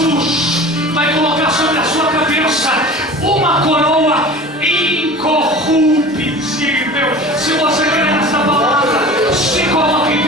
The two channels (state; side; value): normal; both; correlation 0.38